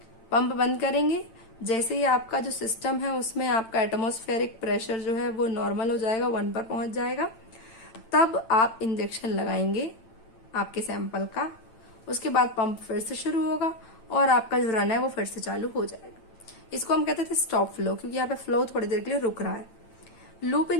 पंप बंद करेंगे जैसे ही आपका जो सिस्टम है उसमें आपका एटमॉस्फेरिक प्रेशर जो है वो नॉर्मल हो जाएगा, 1 पर पहुंच जाएगा, तब आप इंजेक्शन लगाएंगे आपके सैंपल का। उसके बाद पंप फिर से शुरू होगा और आपका जो रन है वो फिर से चालू हो जाएगा। इसको हम कहते थे स्टॉप फ्लो, क्योंकि यहाँ पे फ्लो थोड़ी देर के लिए रुक रहा है। लूप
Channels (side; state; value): right; late; 8.9 ms